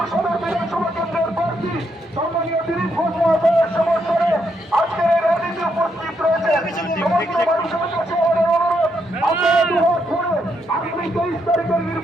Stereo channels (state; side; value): normal; both; correlation 0.77